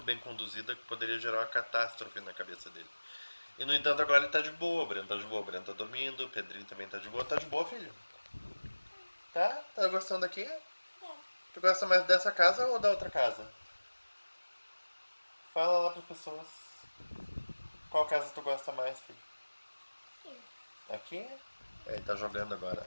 bem conduzida, poderia gerar uma catástrofe na cabeça dele. E no entanto agora ele tá de boa, o Breno tá de boa, o Breno tá dormindo, o Pedrinho também tá de boa. Tá de boa, filho? Tá? Tá gostando daqui? Tu gosta mais dessa casa ou da outra casa? Fala lá pras pessoas. Qual casa tu gosta mais, filho? Aqui? Ele tá jogando agora.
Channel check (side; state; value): both; inverted; correlation -1.00